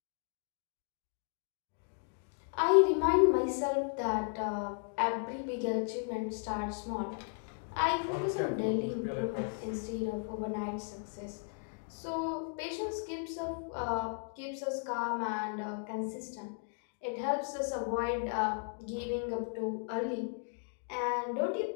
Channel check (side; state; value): right; silent; 54 dB below the other